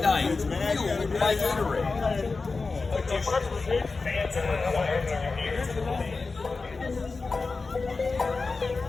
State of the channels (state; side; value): quieter; right; 4.0 dB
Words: night fueled by Gatorade.